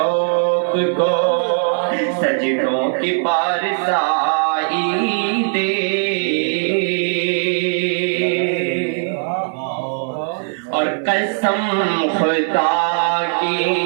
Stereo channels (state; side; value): silent; left; digital silence